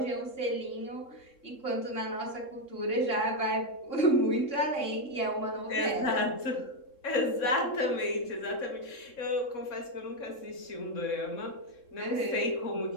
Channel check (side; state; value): right; late; 3.7 ms